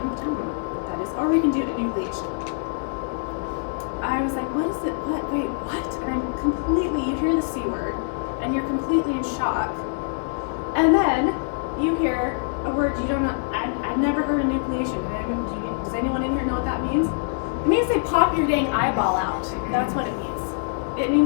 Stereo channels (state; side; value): silent; right; digital silence